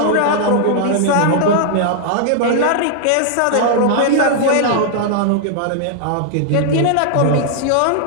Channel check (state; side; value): different; both; correlation -0.01